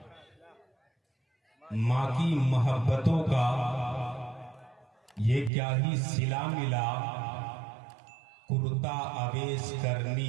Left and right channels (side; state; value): left; drops out; at 5.5 s